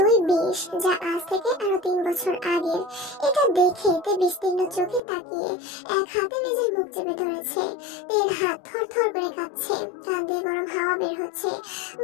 যা আজ থেকে আরো 3 বছর আগের। এটা দেখে তে বিস্তীর্ণ চোখে তাকিয়ে এক হাতে নিজের মুখ চেপে ধরেছে। তের হাত থরথর করে কাঁপছে, কান দিয়ে গরম হাওয়া বের হচ্ছে,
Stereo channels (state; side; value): drops out; right; at 5.0 s